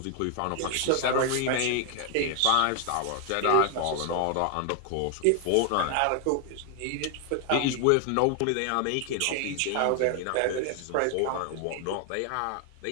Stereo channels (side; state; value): both; different; correlation 0.00